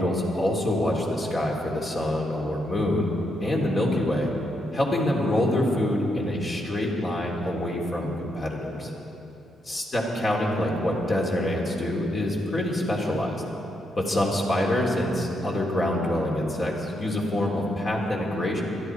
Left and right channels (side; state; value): both; normal; correlation 0.79